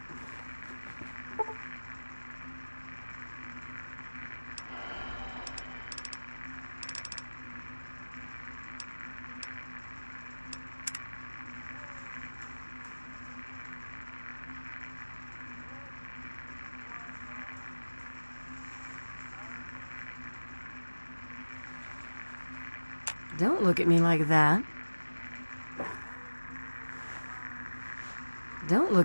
Don't look at me like that. Don't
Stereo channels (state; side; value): inverted; both; correlation -1.00